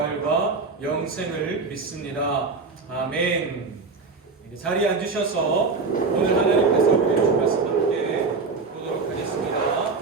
영생을 믿습니다. 아멘. 자리에 앉으셔서 오늘 하나님께서 우리에게 주신 말씀 함께 보도록 하겠습니다.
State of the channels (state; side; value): quieter; left; 4.3 dB